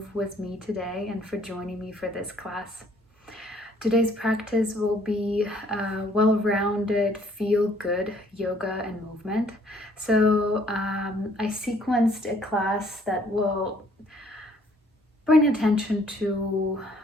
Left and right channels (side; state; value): both; normal; correlation 0.62